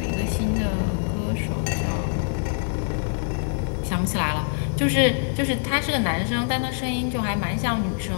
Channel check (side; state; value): right; silent; digital silence